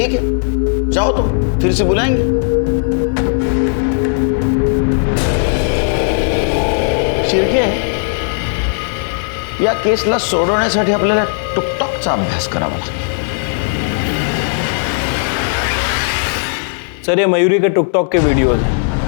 है, जाओ तुम, फिर से बुलाएंगे। शिर्के, या केसला सोडवण्यासाठी आपल्याला टिकटॉकचा अभ्यास करावा लागेल। सर ये मयूरी के टिकटॉक के वीडियोस हैं।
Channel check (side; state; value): right; silent; digital silence